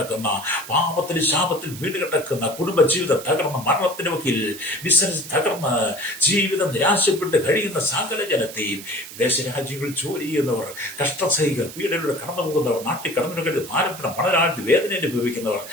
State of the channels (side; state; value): right; noise; hiss, 13 dB below the sound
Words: പാപത്തിൽ ശാപത്തിൽ വീട് കിടക്കുന്ന, കുടുംബജീവിതം തകർന്ന് മരണത്തിന് വക്കിൽ ബിസിനസ് തകർന്ന് ജീവിതം നിരാശപ്പെട്ട് കഴിയുന്ന സകല ജനത്തെയും, വിദേശ രാജ്യങ്ങളിൽ ജോലി ചെയ്യുന്നവർ, കഷ്ടസഹികൾ പീഡനയുടെ കടന്നു പോകുന്നവർ, നാട്ടിൽ കടന്നു കഴിഞ്ഞ് ഭാരപ്പെടാൻ മണരാഴ്ച വേദന അനുഭവിക്കുന്നവർ,